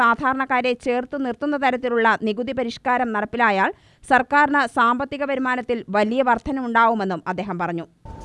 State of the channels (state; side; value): identical; both; correlation 1.00